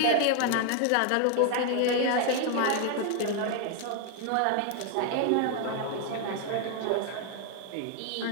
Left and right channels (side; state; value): both; different; correlation 0.01